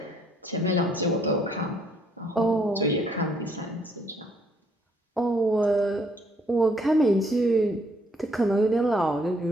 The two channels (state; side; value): normal; both; correlation 0.67